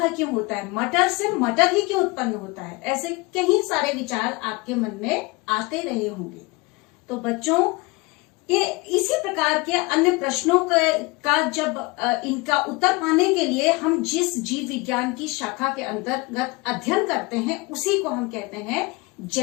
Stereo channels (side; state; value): right; quieter; 25.3 dB